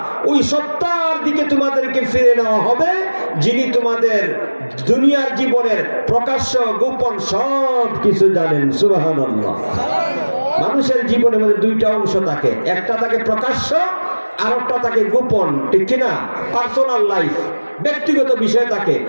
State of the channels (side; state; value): both; inverted; correlation -1.00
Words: ওই সত্তার দিকে তোমাদেরকে ফিরে নেওয়া হবে, যিনি তোমাদের দুনিয়ার জীবনের প্রকাশ্য গোপন সব কিছু জানেন। সুবহানাল্লাহ। মানুষের জীবনের মধ্যে দুইটা অংশ থাকে, একটা থাকে প্রকাশ্য, আর একটা থাকে গোপন, ঠিক কিনা? পার্সোনাল লাইফ, ব্যক্তিগত বিষয় থাকে,